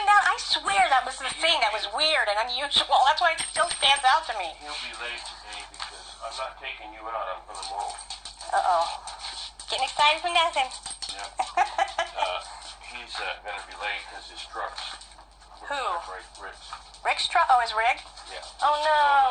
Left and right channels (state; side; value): identical; both; correlation 1.00